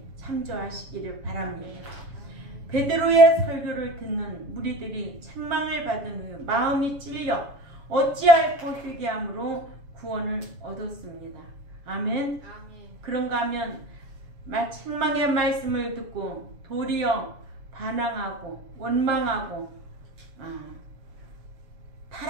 참조하시기를 바랍니다. 베드로의 설교를 듣는 무리들이 책망을 받은 후 마음이 찔려 어찌할꼬 회개함으로 구원을 얻었습니다. 아멘. 그런가 하면 책망의 말씀을 듣고 도리어 반항하고 원망하고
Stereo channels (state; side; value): late; left; 7.1 ms